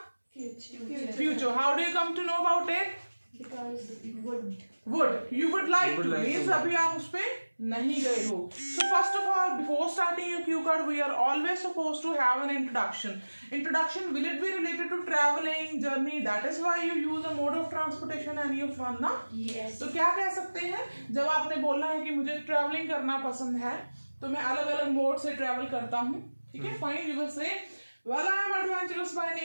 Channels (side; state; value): both; inverted; correlation -1.00